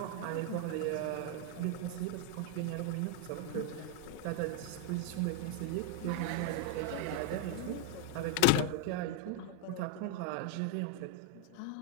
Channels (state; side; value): different; both; correlation 0.01